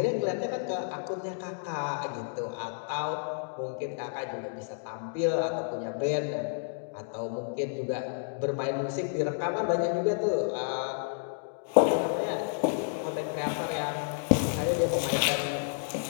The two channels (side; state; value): right; silent; digital silence